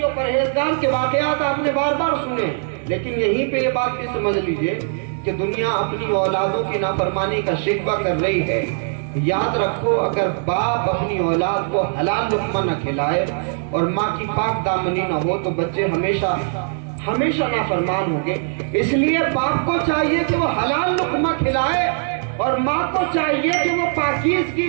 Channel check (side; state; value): left; silent; digital silence